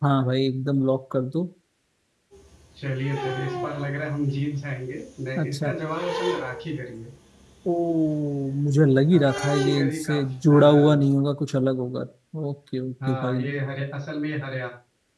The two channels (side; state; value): both; identical; correlation 1.00